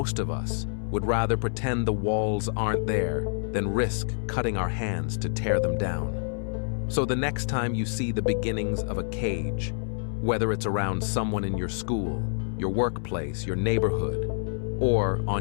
of us would rather pretend the walls aren't there than risk cutting our hands to tear them down. So the next time you see the beginnings of a cage, whether it's around someone in your school, your workplace, your neighborhood, or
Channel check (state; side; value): silent; right; 60 dB below the other